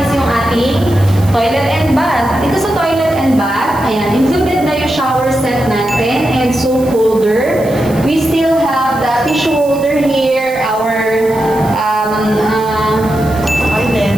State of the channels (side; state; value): right; noise; hiss, 19 dB below the sound